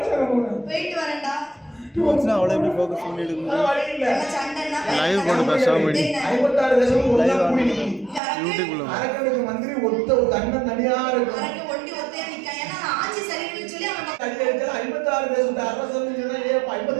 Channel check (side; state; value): left; drops out; at 8.2 s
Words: போயிட்டு வரேன்டா. அவளை எப்படி ஃபோக்கஸ் பண்ணி எடுக்கணும்? வழி இல்ல. என்ன சண்டைன்னா லைவ் போட்டு பேசாம அடி. 56 தேசம் ஒண்ணா கூடி நிக்கி. யூடியூப்ல அரக்கனுக்கு மந்திரி ஒத்த தன்ன தனியா இருக்கு. அரக்க ஒண்டி ஒத்தையா நிக்கா. ஏன்னா ஆட்சி சரியில்லைன்னு சொல்லி அவன் கடியடிச்சா 56 தேசம் அரசன்னு சொன்னா ஏ